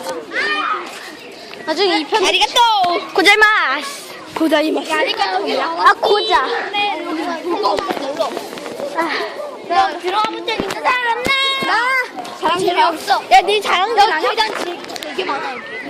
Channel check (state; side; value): identical; both; correlation 1.00